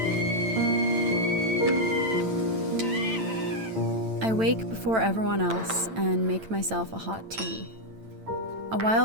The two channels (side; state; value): left; late; 9.0 ms